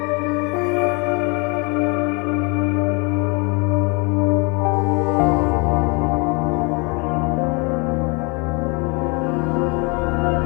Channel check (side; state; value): right; quieter; 31.4 dB